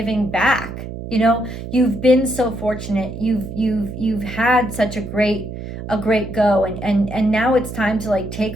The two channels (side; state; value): right; noise; hum, 9 dB below the sound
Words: back. You've been so fortunate. You've had such a great go, and now it's time to like take